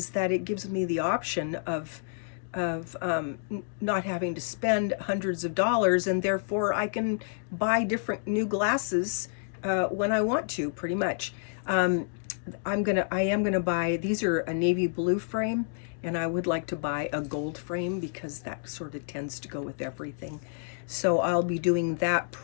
that it gives me the option of not having to spend hundreds of dollars, and therefore I can buy different new glasses when I want to, pretty much. I am gonna buy, these are a navy blue frame, and I would like to buy a gold frame because that sort of tends to go with everything. So I'll be doing that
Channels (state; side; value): silent; right; digital silence